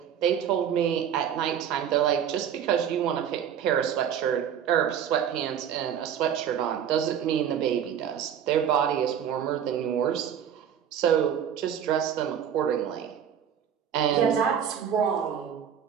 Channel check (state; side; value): quieter; left; 8.8 dB